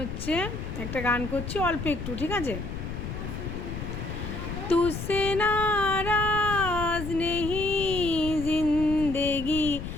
একটা গান করছি অল্প একটু, ঠিক আছে? তুসে নারাজ নেহি জিন্দেগি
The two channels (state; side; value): noise; left; rumble, 7 dB below the sound